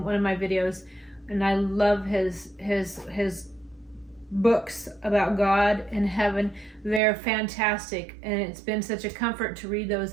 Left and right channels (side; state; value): left; drops out; at 7.0 s